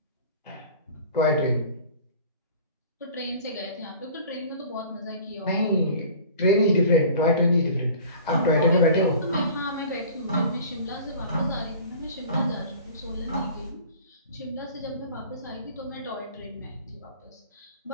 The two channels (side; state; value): both; inverted; correlation -0.44